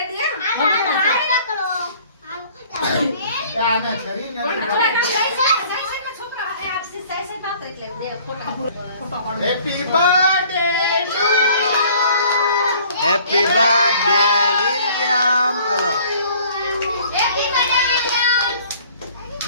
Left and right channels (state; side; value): inverted; both; correlation -0.54